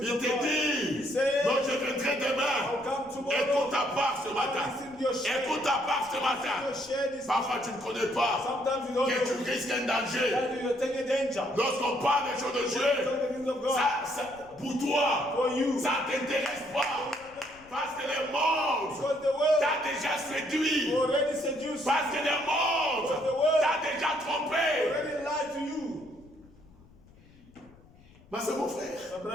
il of te God. dit, He says, donc je viendrai demain. I'll come tomorrow. Écoute ta part ce matin. Listen to your share. Écoute ta part ce matin. Your share this. Parfois tu ne connais pas Sometimes you don't que tu know risques un danger. that you're taking danger. Lorsqu'on parle des choses de Talk Dieu, the things of God. pour toi, For you. ça ne t'intéresse pas. Parce que le monde Because the world t'a déjà séduit. already seduced you. Parce que le monde t'a déjà trompé. Already lied to you. Mais c'est mon frère. My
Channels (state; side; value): noise; left; rumble, 25 dB below the sound